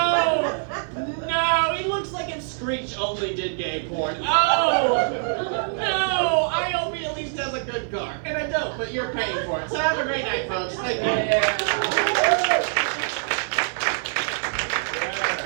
no, he looks like if Screech only did gay porn. Oh no, I hope he at least has a good car." And I don't, but you're paying for it. So have a great night, folks. Thank you.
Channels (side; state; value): left; silent; 62 dB below the other